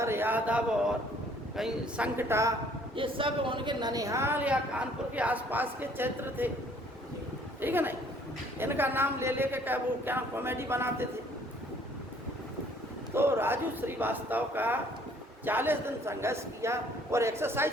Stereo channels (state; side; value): normal; both; correlation 0.59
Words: यादव और कहीं संकटा, ये सब उनके ननिहाल या कानपुर के आसपास के क्षेत्र थे। ठीक है नहीं, इनका नाम ले लेके क्या वो क्या कॉमेडी बनाते थे। तो राजू श्रीवास्तव का 40 दिन संघर्ष किया और